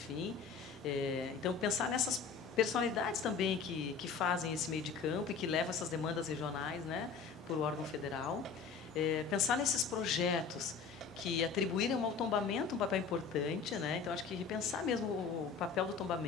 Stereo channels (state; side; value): quieter; right; 5.7 dB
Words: então pensar nessas personalidades também que fazem esse meio de campo e que levam essas demandas regionais, né? Por o órgão federal. Pensar nesses projetos que atribuíram ao tombamento um papel importante, né? Então acho que repensar mesmo o papel do